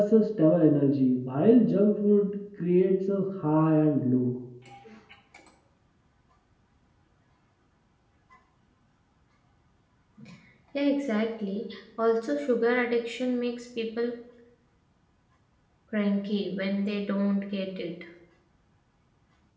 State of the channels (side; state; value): both; identical; correlation 1.00